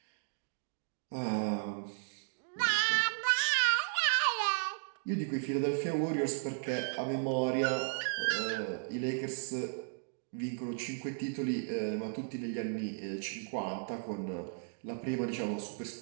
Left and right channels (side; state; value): left; silent; digital silence